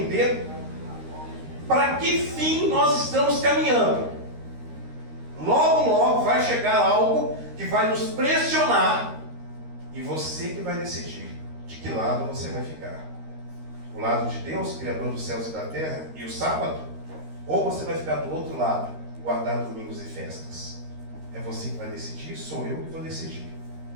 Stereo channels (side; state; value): left; late; 13 ms